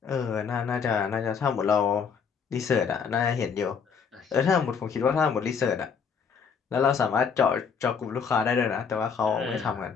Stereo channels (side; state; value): right; quieter; 6.3 dB